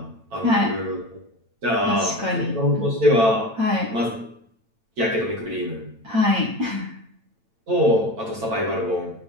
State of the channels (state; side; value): late; left; 8.9 ms